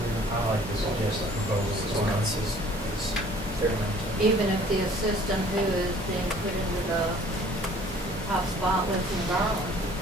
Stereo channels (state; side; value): normal; both; correlation 0.54